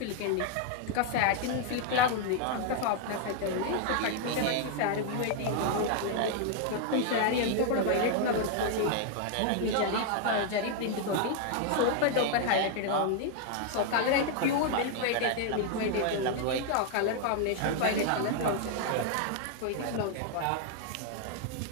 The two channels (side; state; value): both; different; correlation 0.00